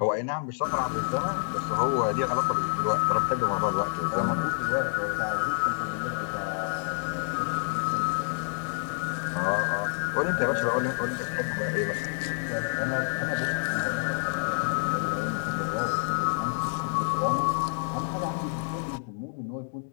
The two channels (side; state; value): right; silent; digital silence